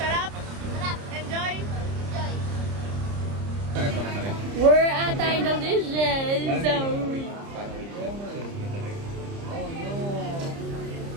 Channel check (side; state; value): left; late; 30 ms